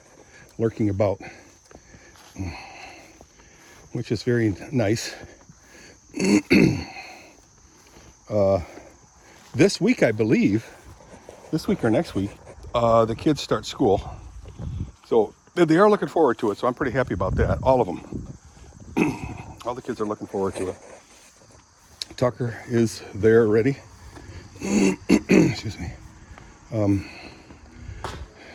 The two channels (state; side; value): identical; both; correlation 1.00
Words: lurking about, which is very nice. This week, I believe, this week or next week, the kids start school. So they are looking forward to it. So I'm pretty happy about that. All of them. All the kids are looking forward to it. Tucker is there already. Excuse me.